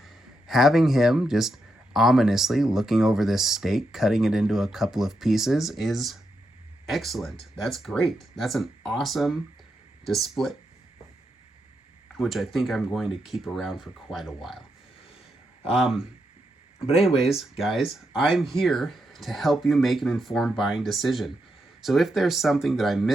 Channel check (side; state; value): both; normal; correlation 0.83